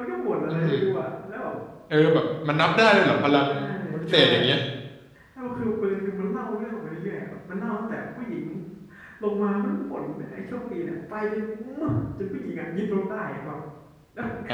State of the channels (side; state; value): both; identical; correlation 1.00